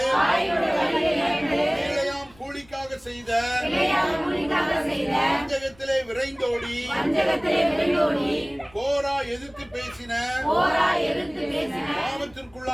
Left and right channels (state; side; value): noise; left; rumble, 27 dB below the sound